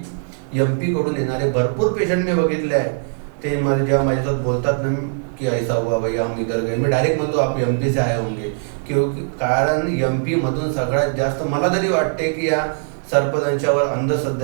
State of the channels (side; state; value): left; silent; digital silence